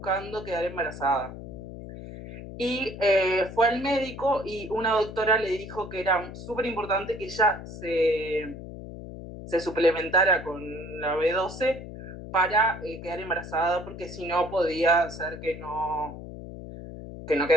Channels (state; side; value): noise; left; hum, 11 dB below the sound